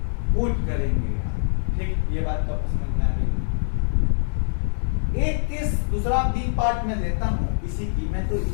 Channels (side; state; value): right; silent; digital silence